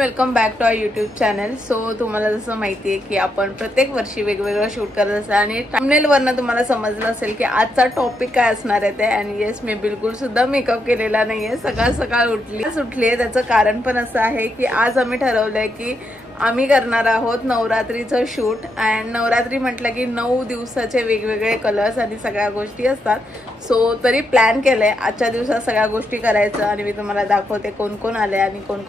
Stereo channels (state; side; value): normal; both; correlation 0.81